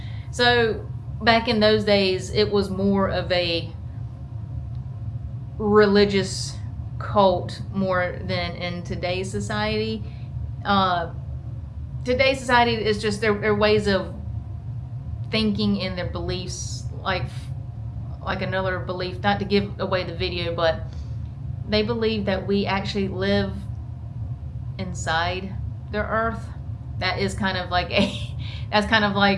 So back in those days, it was more of a religious cult more than in today's society. Today's society is just their ways of thinking and their beliefs, like another belief, not to give away the video, but they believe that we actually live inside the earth. That is kind of like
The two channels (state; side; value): identical; both; correlation 1.00